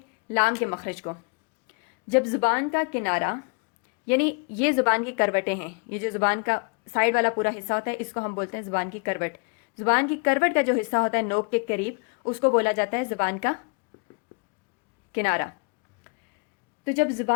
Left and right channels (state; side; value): quieter; right; 33.8 dB